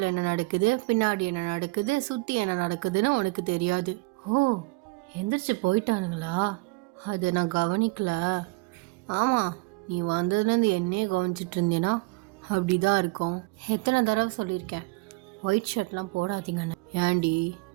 என்ன நடக்குது, பின்னாடி என்ன நடக்குது, சுற்றி என்ன நடக்குதுன்னு உனக்கு தெரியாது. எந்திரிச்சு போயிட்டானுங்களா? அது நான் கவனிக்கல. ஆமாம், நீ வந்ததுலேருந்து என்னையே கவனிச்சிட்டு இருந்தேன்னா அப்படி தான் இருக்கும். எத்தனை தடவை சொல்லியிருக்கேன் ஒயிட் ஷர்ட்லாம் போடாதீங்கன்னு. ஏண்டி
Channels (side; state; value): left; quieter; 24.9 dB